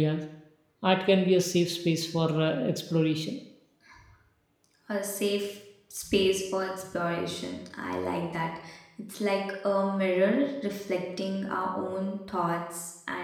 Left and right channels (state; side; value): identical; both; correlation 1.00